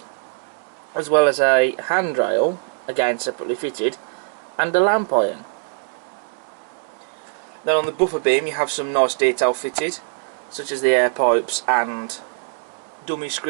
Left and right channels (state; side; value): silent; left; digital silence